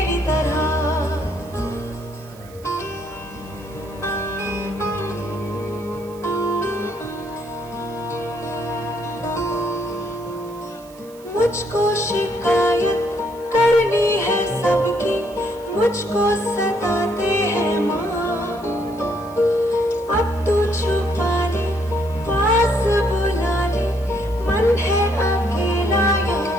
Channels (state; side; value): noise; right; hiss, 24 dB below the sound